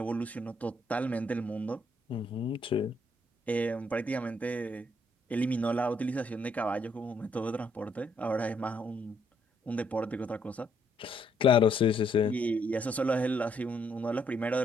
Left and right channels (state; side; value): normal; both; correlation 0.71